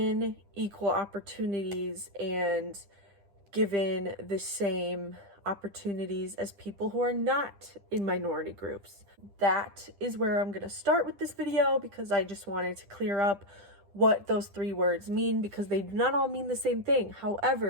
equal opportunities and given the same opportunities as people who are not in minority groups. That is where I'm going to start with this video because I just wanted to clear up what those three words mean because they do not all mean the same thing.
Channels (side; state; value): left; late; 10 ms